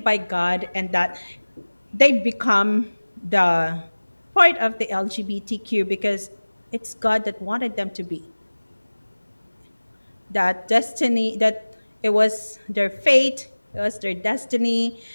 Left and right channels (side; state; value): both; inverted; correlation -1.00